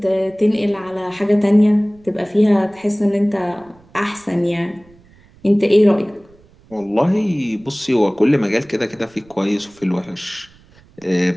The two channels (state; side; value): noise; right; rumble, 28 dB below the sound